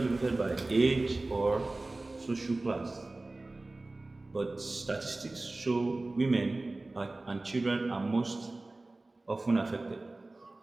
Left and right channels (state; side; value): quieter; left; 3.0 dB